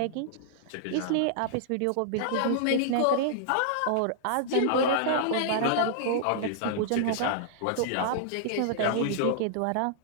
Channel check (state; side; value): different; both; correlation -0.01